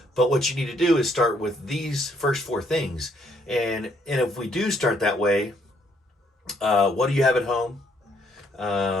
But what you need to do is start with these first four things. And if we do start that way, what do you have at home?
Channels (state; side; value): normal; both; correlation 0.69